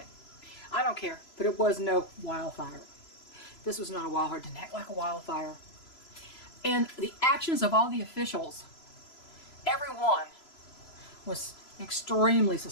I don't care, but it was no wildfire. This was not a wildfire. It didn't act like a wildfire. And the actions of all the officials, everyone, was extremely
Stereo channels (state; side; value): late; right; 3.0 ms